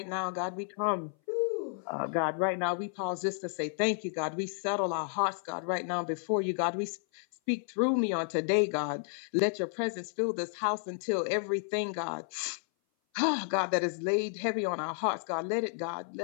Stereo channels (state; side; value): silent; right; 57 dB below the other